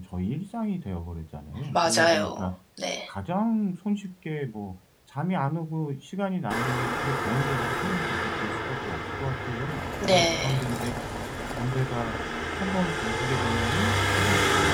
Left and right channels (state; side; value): identical; both; correlation 1.00